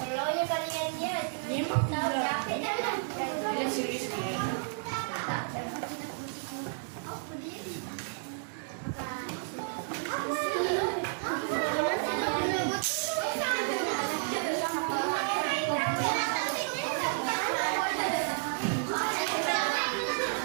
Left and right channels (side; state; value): left; silent; digital silence